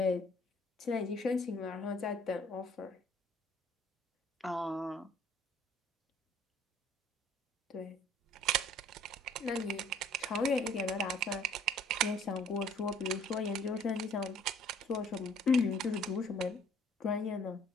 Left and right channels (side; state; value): both; normal; correlation 0.58